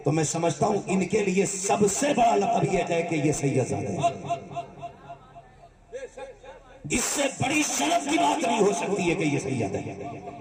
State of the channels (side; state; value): both; identical; correlation 1.00